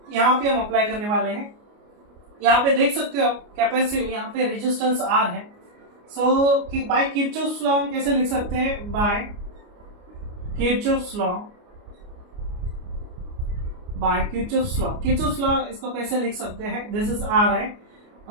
यहाँ पे हम अप्लाई करने वाले हैं। यहाँ पे देख सकते हो आप कैपेसिटी, यहाँ पे रेजिस्टेंस आर है। सो बाय किरचॉफ्स लॉ हम कैसे लिख सकते हैं, बाय किरचॉफ्स लॉ इसको कैसे लिख सकते हैं, दिस इज आर है,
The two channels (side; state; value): left; late; 29 ms